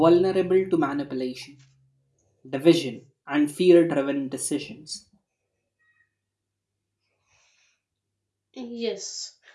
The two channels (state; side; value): identical; both; correlation 1.00